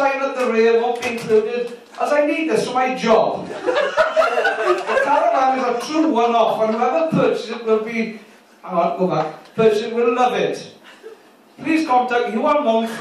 at the rear won't be included, as I need this for my job. The caravan is a true one-off, and whoever purchases it will be... Hang on, go back. Purchases it will love it. Please contact Ewan Monk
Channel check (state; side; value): identical; both; correlation 1.00